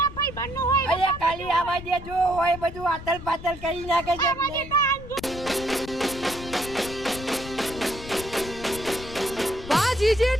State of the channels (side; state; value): left; noise; rumble, 13 dB below the sound